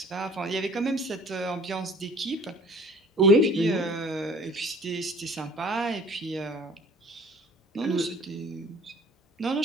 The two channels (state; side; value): normal; both; correlation 0.50